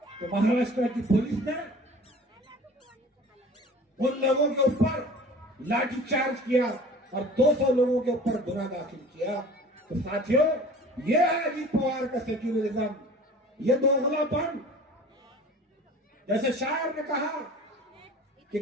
तो महाराष्ट्र की पुलिस ने उन लोगों के ऊपर लाठीचार्ज किया और 200 लोगों के ऊपर गुनाह दाखिल किया। तो साथियों, ये है अजीत पवार का सेक्युलरिज्म, ये दोगलापन। जैसे शायर ने कहा कि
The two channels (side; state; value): both; normal; correlation 0.43